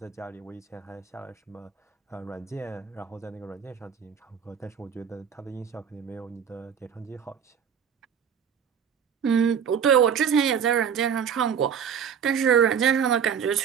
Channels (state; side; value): quieter; left; 7.6 dB